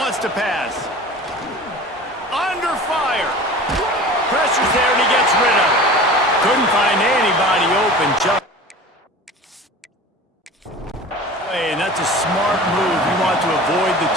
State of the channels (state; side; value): normal; both; correlation 0.38